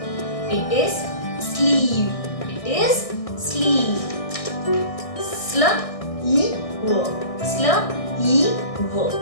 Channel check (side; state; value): right; late; 1.6 ms